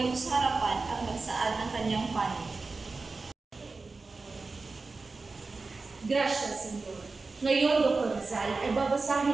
sa harapan at magsaad ng kanyang panig. Gracias, Senyor. Ngayon, Dr. Rizal, ay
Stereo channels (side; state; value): left; quieter; 3.9 dB